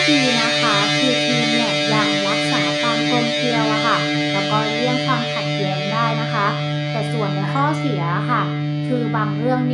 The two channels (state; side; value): identical; both; correlation 1.00